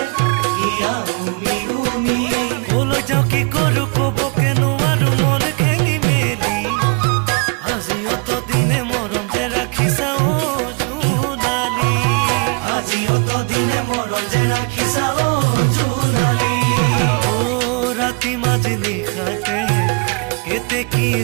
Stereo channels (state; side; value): quieter; left; 32.3 dB